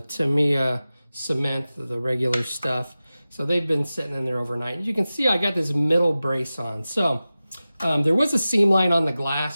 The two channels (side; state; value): both; inverted; correlation -0.95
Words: Tamiya cement, the regular stuff. So they've been sitting in there overnight. As you can see, I got this middle brace on. So there was a seam line on the